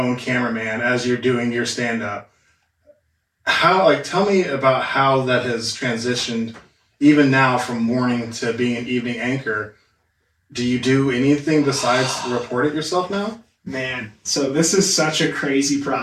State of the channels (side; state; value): both; identical; correlation 1.00